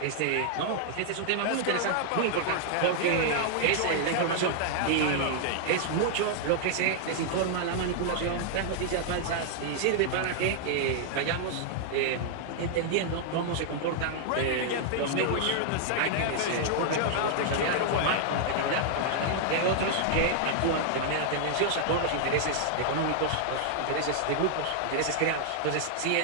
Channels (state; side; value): different; both; correlation -0.01